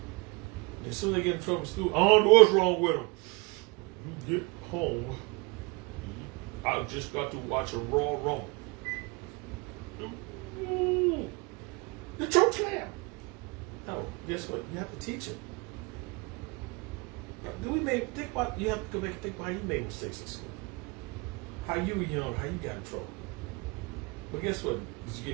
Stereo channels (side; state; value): left; quieter; 28.0 dB